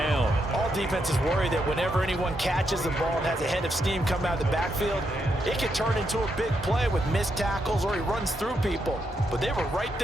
All defenses worry that whenever anyone catches the ball and has a head of steam come out of the backfield, it can turn into a big play with missed tackles or he runs through people. But they were right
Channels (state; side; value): normal; both; correlation 0.80